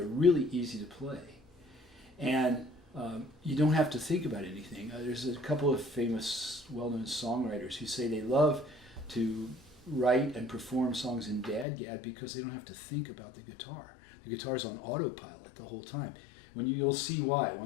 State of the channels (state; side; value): drops out; right; at 11.7 s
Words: really easy to play, and you don't have to think about anything. There's a couple of famous, well-known songwriters who say they love to write and perform songs in DADGAD because they don't have to think about the guitar. The guitar's on autopilot the whole time. You'll see why